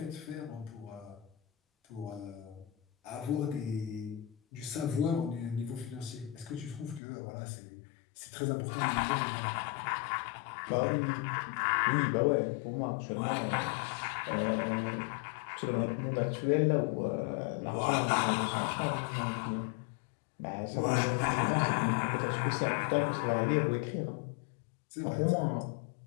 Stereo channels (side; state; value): right; drops out; at 7.0 s